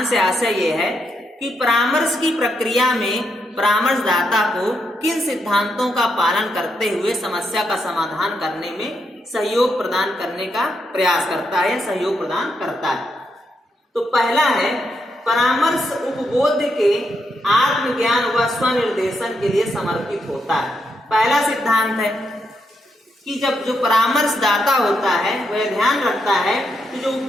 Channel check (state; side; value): normal; both; correlation 0.80